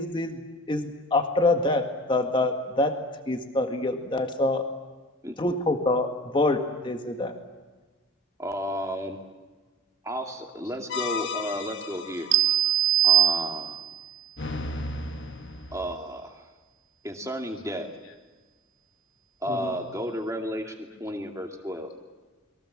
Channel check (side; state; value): both; normal; correlation 0.41